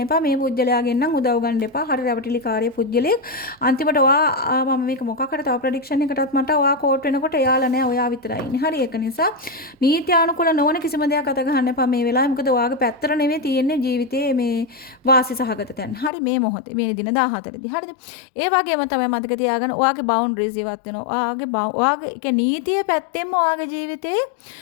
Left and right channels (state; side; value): drops out; right; at 16.1 s